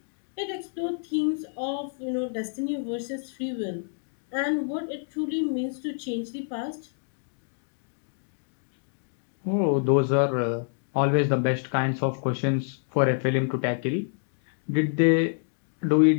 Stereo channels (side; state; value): right; silent; digital silence